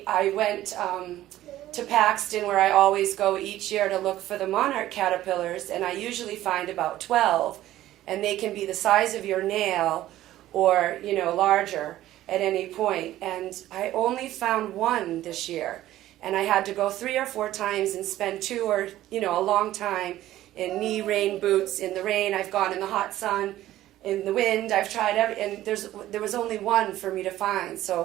I went to Paxton, where I always go each year to look for the monarch caterpillars, and I usually find about 12, and they can be the size of your nail or, larger at any point. And I only found one this year, and I had to go 3 or 4 times and spend 2 or, a long time in knee rain boots, in the rain. I've gone in the hot sun, in the wind. I've tried and there was only one for me to find.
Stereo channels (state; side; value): quieter; left; 14.3 dB